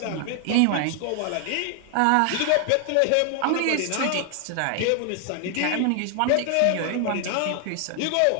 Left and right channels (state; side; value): different; both; correlation 0.00